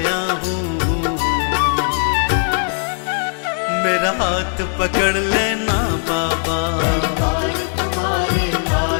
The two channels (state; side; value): silent; right; 65 dB below the other